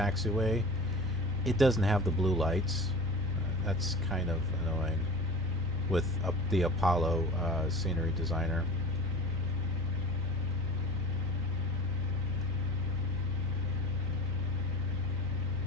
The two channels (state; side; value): normal; both; correlation 0.37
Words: it doesn't have the blue lights. That's kind of annoying with the Apollo scenery designer.